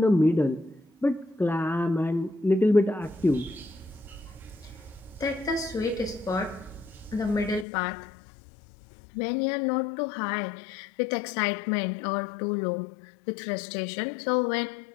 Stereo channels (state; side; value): drops out; right; at 7.7 s